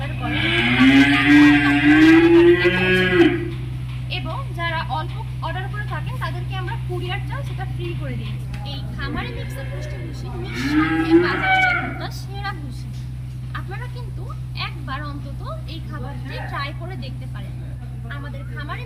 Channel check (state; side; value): identical; both; correlation 1.00